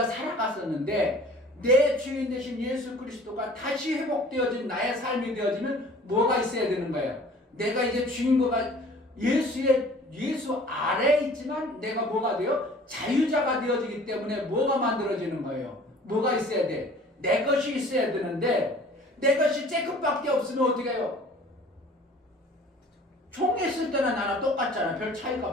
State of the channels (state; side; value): normal; both; correlation 0.49